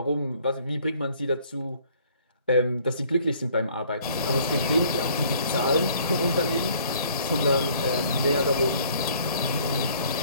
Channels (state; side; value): inverted; both; correlation -0.58